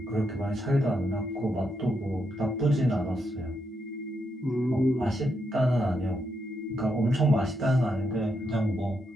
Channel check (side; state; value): both; normal; correlation 0.80